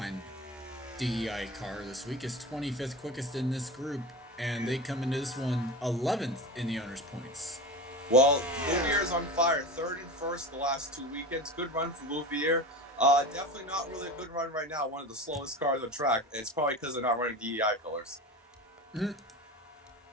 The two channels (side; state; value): both; normal; correlation 0.28